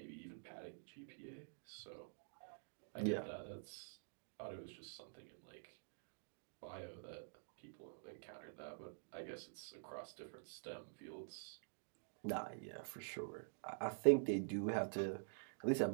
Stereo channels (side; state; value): left; silent; digital silence